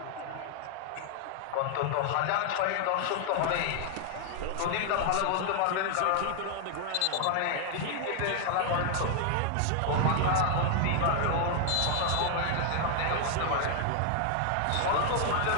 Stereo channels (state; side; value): different; both; correlation 0.00